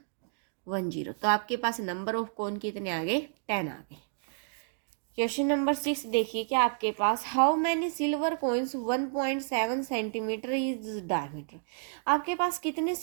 तो आपके पास नंबर ऑफ कोन कितने आ गए, 10 आ गए। क्वेश्चन नंबर 6 देखिए क्या आपके पास, how many silver coins 1.7 centimetre is diameter. आपके पास कितने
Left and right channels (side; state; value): left; silent; digital silence